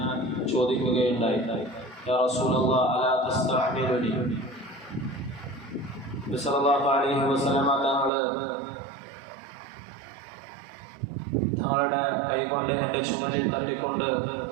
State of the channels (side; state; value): left; drops out; at 8.1 s